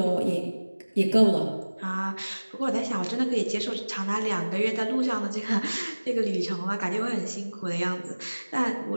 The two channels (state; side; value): inverted; both; correlation -1.00